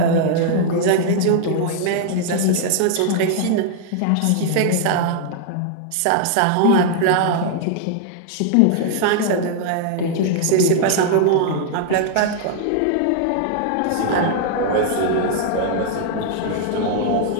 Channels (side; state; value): both; different; correlation -0.01